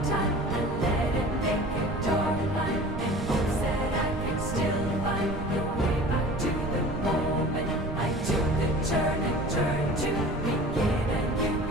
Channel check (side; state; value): right; noise; rumble, 6 dB below the sound